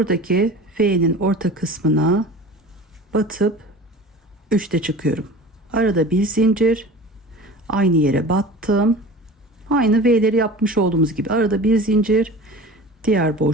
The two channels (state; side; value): normal; both; correlation 0.37